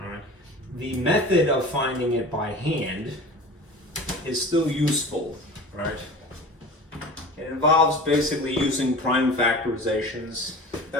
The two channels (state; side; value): normal; both; correlation 0.37